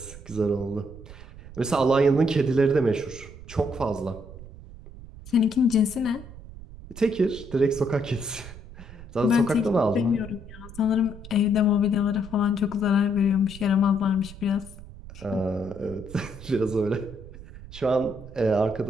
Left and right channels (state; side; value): noise; right; rumble, 16 dB below the sound